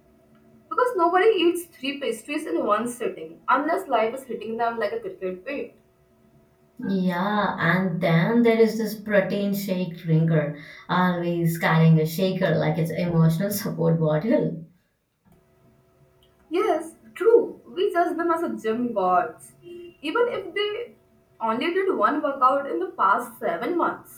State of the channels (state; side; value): identical; both; correlation 1.00